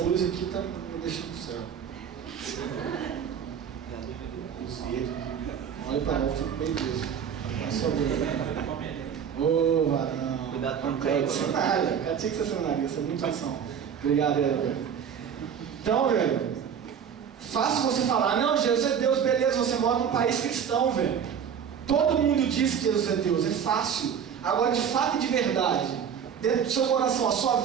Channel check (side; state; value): left; quieter; 7.8 dB